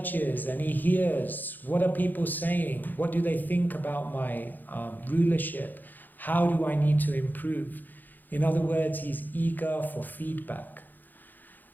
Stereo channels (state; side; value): late; right; 0.087 ms